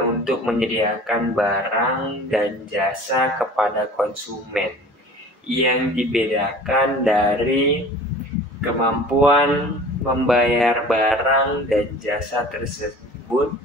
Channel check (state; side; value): normal; both; correlation 0.43